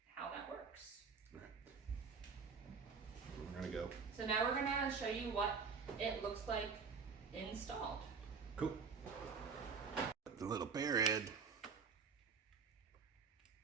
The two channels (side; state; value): left; quieter; 5.5 dB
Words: how that works. Right. We're gonna go. So now we're gonna show you what it looks like installed. Cool. The little bear head.